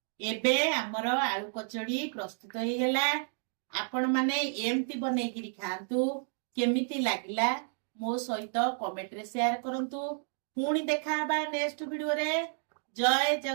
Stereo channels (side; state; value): left; silent; 57 dB below the other